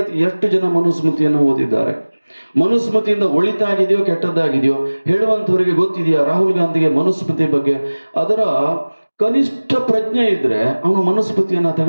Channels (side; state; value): both; inverted; correlation -1.00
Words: ಎಷ್ಟು ಜನ ಮನುಸ್ಮೃತಿಯನ್ನು ಓದಿದ್ದಾರೆ? ಮನುಸ್ಮೃತಿಯಿಂದ ಒಳಿತಾಗಿದೆಯೋ ಕೆಟ್ಟದ್ದಾಗಿದೆಯೋ ಹೇಳುವಂಥವರಿಗೆ ಗೊತ್ತಿದೆಯಾ? ರಾಹುಲ್ ಗಾಂಧಿಗೆ ಮನುಸ್ಮೃತಿ ಬಗ್ಗೆ ಅದರ ಕನಿಷ್ಠ ಪ್ರಜ್ಞೆ ಇದ್ರೆ ಅವನು ಮನುಸ್ಮೃತಿಯನ್ನು